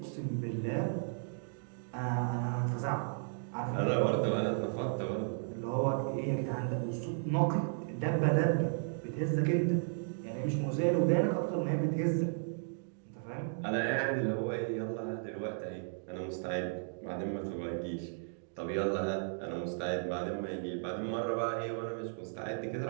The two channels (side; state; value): left; silent; digital silence